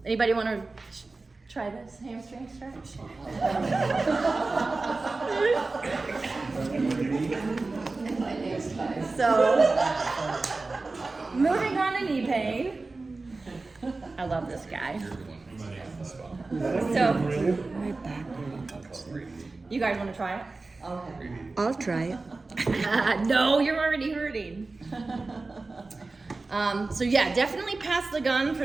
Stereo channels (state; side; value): quieter; left; 3.5 dB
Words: Anybody want to try this hamstring stretch? So, moving on to knee pain. I love this guy. So, My back hurts. you guys want to try it? Okay. I'll try it. No, you're already hurting. So yeah, definitely pass the gun for